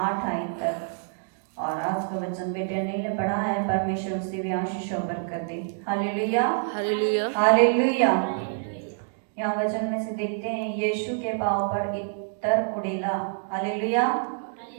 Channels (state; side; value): silent; left; digital silence